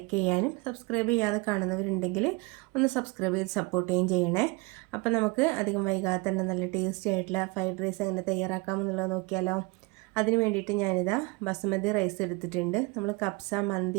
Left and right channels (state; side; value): quieter; left; 26.5 dB